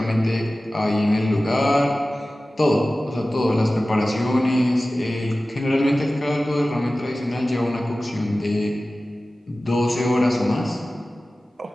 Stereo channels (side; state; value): both; normal; correlation 0.96